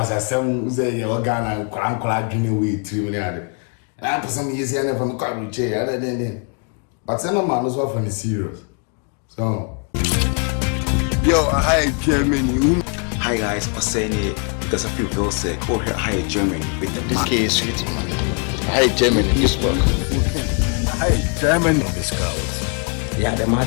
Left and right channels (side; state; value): right; quieter; 38.2 dB